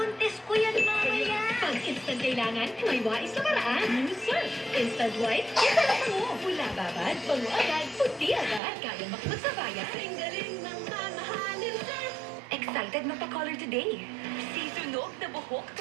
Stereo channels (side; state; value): left; drops out; at 8.6 s